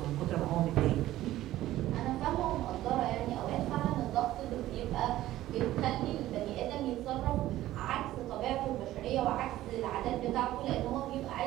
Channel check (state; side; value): quieter; left; 14.8 dB